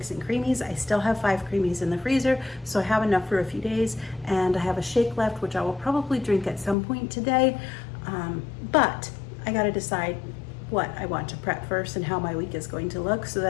and creamies. I still have 5 creamies in the freezer, so I have enough for a few days, and I have a shake left, which I will probably drink at some point today, but I gotta decide what I want to prep first and how my week is going to look so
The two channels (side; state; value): right; drops out; at 6.8 s